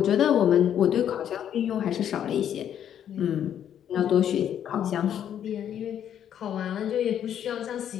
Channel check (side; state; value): right; quieter; 9.7 dB